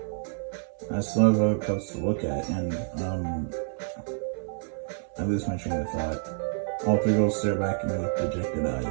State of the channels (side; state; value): left; silent; 59 dB below the other